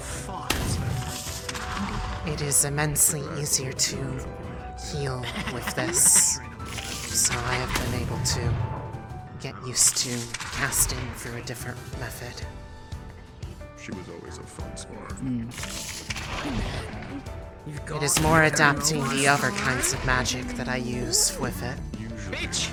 fun. It is immensely easier to heal with this. So I have been able to get used to casting through a different method. She was always a fun spar. It is more adapting the other kinds of magic that I use with it. Usually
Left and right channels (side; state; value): both; identical; correlation 1.00